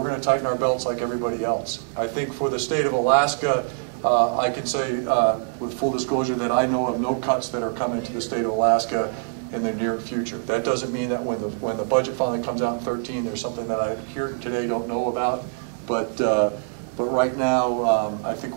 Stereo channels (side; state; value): left; silent; 62 dB below the other